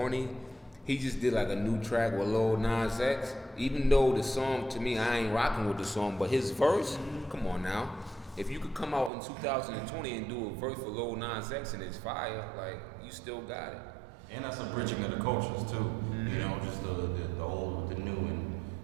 he just did like a new track with Lil Nas X. Even though the song, to me, I ain't rocking with the song, but his verse, come on now. If you could come out in 2020 and do a verse for Lil Nas X and it's fire, like, you still got it. And that's a bridging of the cultures too. You know, just the old with the new and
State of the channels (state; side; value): drops out; left; at 9.1 s